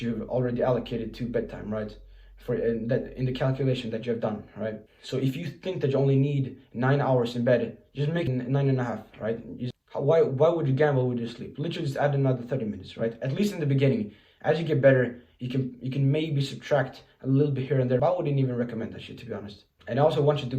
you've already allocated to bedtime, right? For in the calculation that you have done, right? So if you think that you only need 9 hours in bed, just make it 9.5, right? Why would you gamble with your sleep? Literally just add another 30 minutes, right? At least in the beginning. As you get better, you can maybe subtract a little bit here and there, but I wouldn't even recommend that shit, to be honest. And I also want you to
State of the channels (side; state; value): both; identical; correlation 1.00